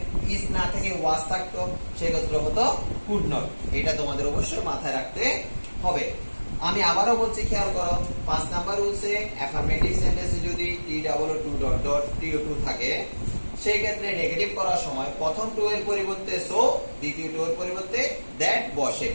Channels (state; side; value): inverted; both; correlation -1.00